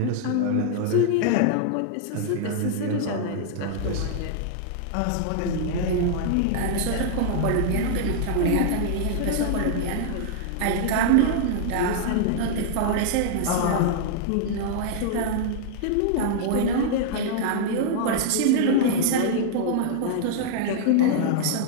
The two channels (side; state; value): both; different; correlation -0.01